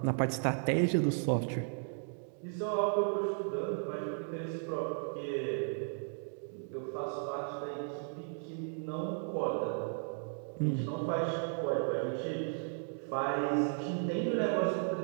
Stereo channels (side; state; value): left; silent; 54 dB below the other